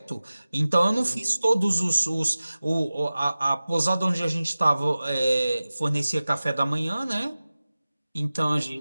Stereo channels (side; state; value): both; inverted; correlation -0.96